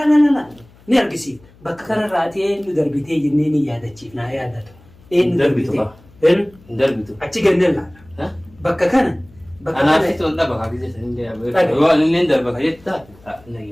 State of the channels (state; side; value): noise; left; hum, 27 dB below the sound